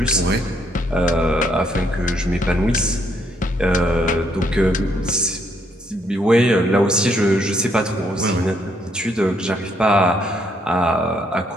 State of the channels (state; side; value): normal; both; correlation 0.71